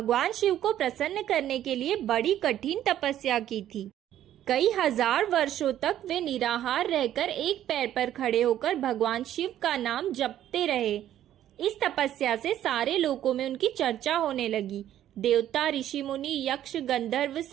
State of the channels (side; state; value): left; quieter; 11.8 dB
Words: शिव को प्रसन्न करने के लिए बड़ी कठिन तपस्या की थी। कई हजार वर्षों तक वे निराहार रहकर एक पैर पर खड़े होकर भगवान शिव का नाम जपते रहे। इस तपस्या से सारे लोकों में उनकी चर्चा होने लगी। देवता, ऋषि मुनि, यक्ष, गंधर्व